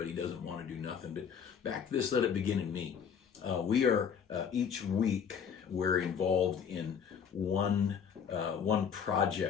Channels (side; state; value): right; quieter; 7.2 dB